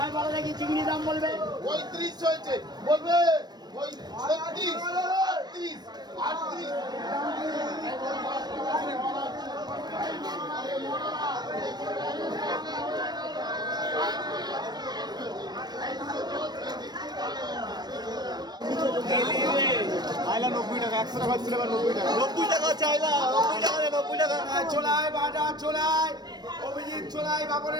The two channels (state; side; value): late; left; 0.20 ms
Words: ভালো দেখি চিংড়ি দাম বলবে 35 হয়েছে বলবে ওই 36 38 আইলা 90 টাকা 100 টাকা ছিল 90 টাকা 90 টাকা চাইলা 90 টাকা 90 টাকা ছোলাই বাটা ছোলাই অভিজিৎ ছোলাই